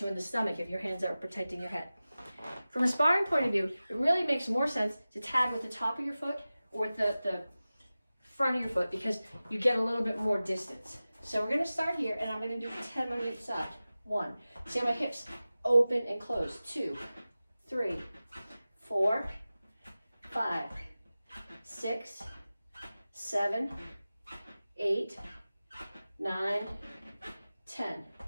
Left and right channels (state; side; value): inverted; both; correlation -0.96